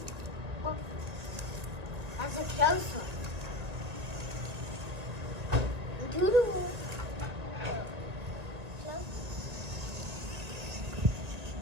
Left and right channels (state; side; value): late; left; 1.8 ms